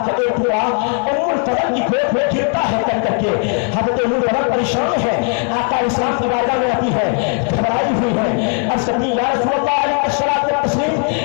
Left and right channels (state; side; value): quieter; right; 38.0 dB